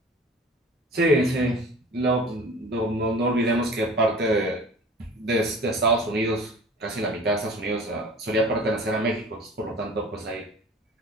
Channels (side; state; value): both; normal; correlation 0.43